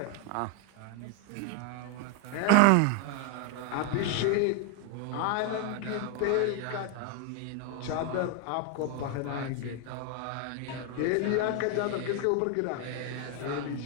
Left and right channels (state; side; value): different; both; correlation 0.01